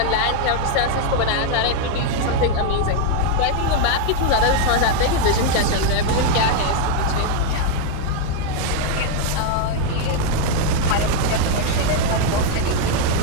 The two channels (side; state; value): both; different; correlation 0.00